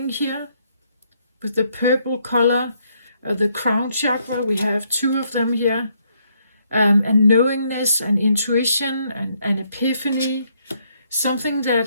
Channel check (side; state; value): both; inverted; correlation -0.72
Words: here. With the purple color, the crown chakra, we have two of them here, and knowingness and intuition and epiphany, something that